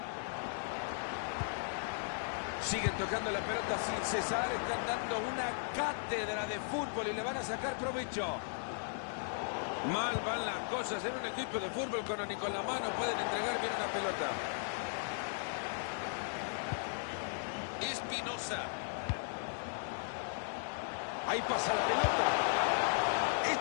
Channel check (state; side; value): silent; right; digital silence